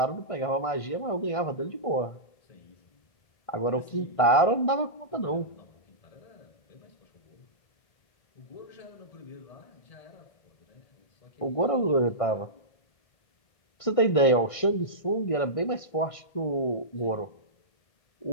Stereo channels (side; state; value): right; late; 1.5 ms